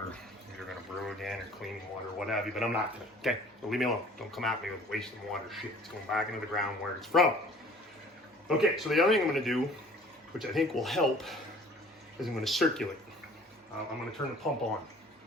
if you're gonna brew again or cleaning water or what have you, but I'm not gonna, okay? So leave me alone. Don't come at me with wasting water shit. It's going back into the ground where it's from. Okay, so the other thing I'm gonna do, which I think will help, is I'm gonna circulate. I'm gonna turn the pump on,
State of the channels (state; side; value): normal; both; correlation 0.50